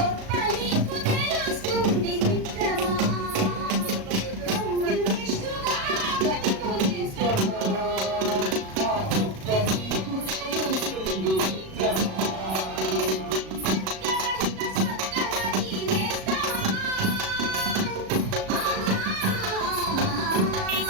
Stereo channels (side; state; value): left; late; 37 ms